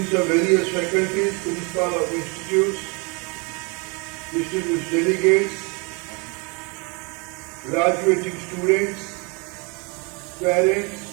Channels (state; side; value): quieter; left; 31.2 dB